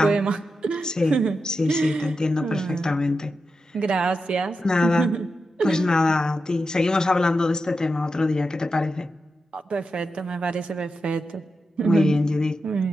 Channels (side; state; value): both; normal; correlation 0.89